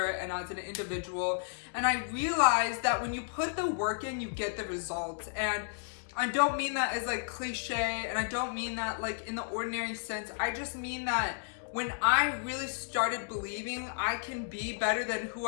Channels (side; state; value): right; silent; digital silence